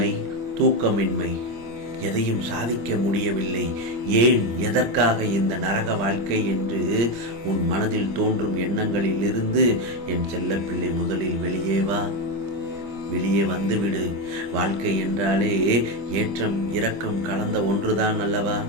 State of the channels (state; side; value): late; left; 25 ms